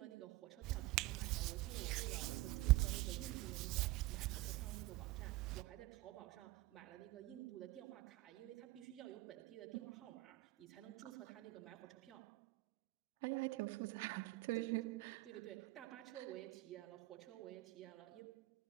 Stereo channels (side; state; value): left; quieter; 19.2 dB